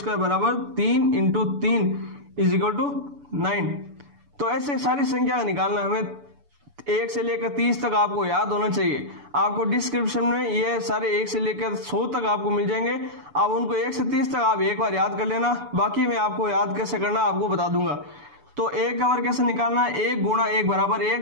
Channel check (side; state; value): left; late; 6.9 ms